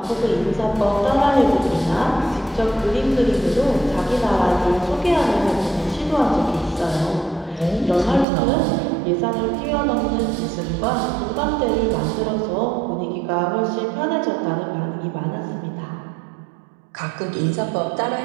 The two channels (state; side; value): drops out; left; at 8.2 s